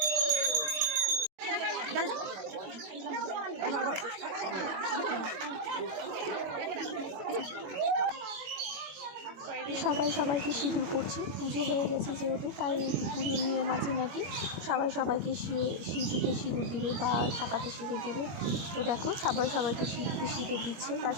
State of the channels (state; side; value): late; left; 21 ms